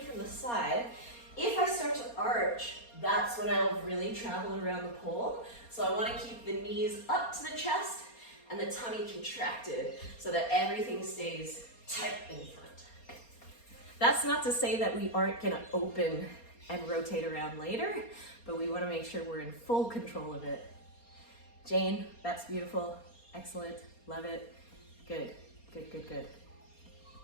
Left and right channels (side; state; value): right; late; 4.3 ms